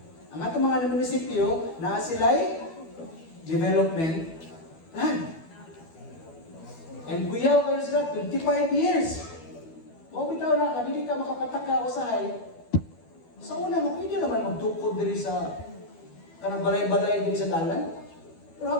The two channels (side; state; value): right; late; 12 ms